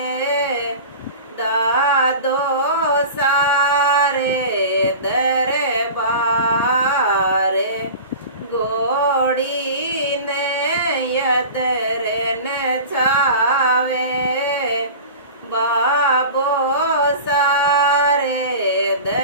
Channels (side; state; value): both; inverted; correlation -0.35